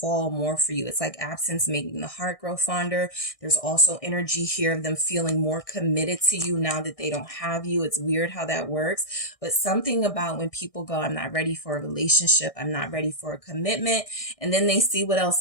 more for you. It's like absence making the heart grow fonder. There's also energy here of them feeling more committed to you now that they don't have you. It's weird how that works, but something about when people go, I'm not ready for a relationship, I'm not ready for a commitment, and then they see what else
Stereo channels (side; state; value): right; late; 1.6 ms